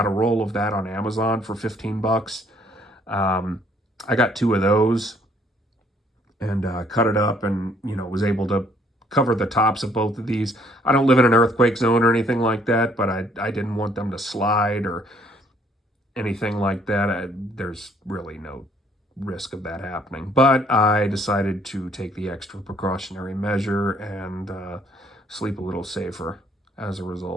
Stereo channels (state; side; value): normal; both; correlation 0.63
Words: a roll of that on Amazon for $15. I got 2 of those and cut it up, and was able to cover the tops of both of these. I don't live in an earthquake zone or anything like that, but I didn't want them to slide or anything like that. There's really no risk of that happening. But I decided to take the extra precautionary measure and sleep a little safer as a